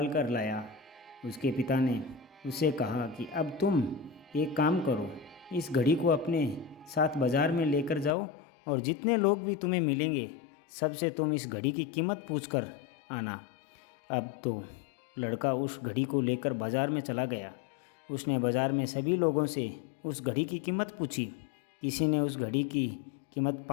कर लाया। उसके पिता ने उससे कहा कि अब तुम एक काम करो, इस घड़ी को अपने साथ बाज़ार में लेकर जाओ और जितने लोग भी तुम्हें मिलेंगे सबसे तुम इस घड़ी की कीमत पूछ कर आना। अब तो लड़का उस घड़ी को लेकर बाज़ार में चला गया। उसने बाज़ार में सभी लोगों से उस घड़ी की कीमत पूछी। किसी ने उस घड़ी की कीमत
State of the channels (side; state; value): right; drops out; at 8.2 s